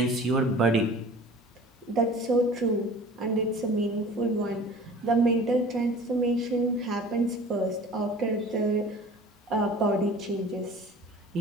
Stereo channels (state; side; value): normal; both; correlation 0.43